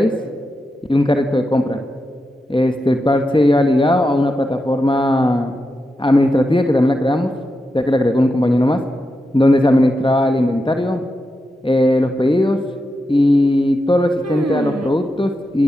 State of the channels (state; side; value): normal; both; correlation 0.88